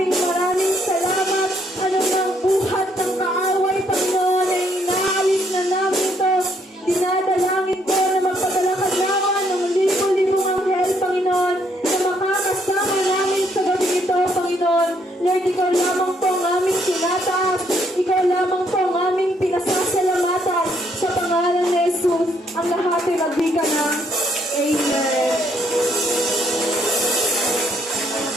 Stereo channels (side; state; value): both; normal; correlation 0.70